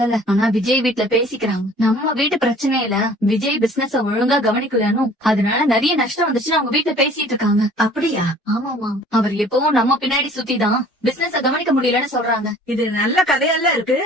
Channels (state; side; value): normal; both; correlation 0.51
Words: ஆனா விஜய் வீட்ல பேசிக்கிறாங்க. நம்ம வீட்டு பிரச்சனையில விஜய் பிசினஸ் ஒழுங்கா கவனிக்கலன்னு, அதனால நிறைய நஷ்டம் வந்துச்சுன்னு அவங்க வீட்ல பேசிட்டு இருக்காங்க. அப்படியா? ஆமாமா, அவர் எப்பவும் நம்ம பின்னாடி சுத்திதான் பிசினஸ் கவனிக்க முடியலன்னு சொல்றாங்க. இது நல்ல கதையெல்லாம் இருக்கு.